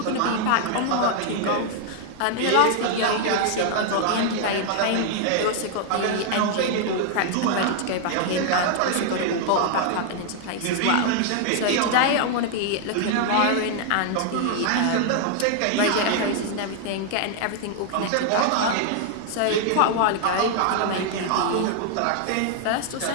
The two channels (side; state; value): both; different; correlation 0.00